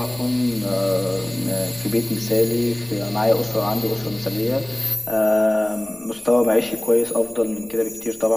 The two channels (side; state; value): left; noise; rumble, 27 dB below the sound